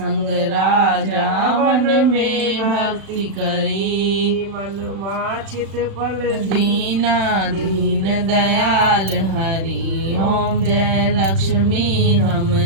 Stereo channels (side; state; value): left; late; 36 ms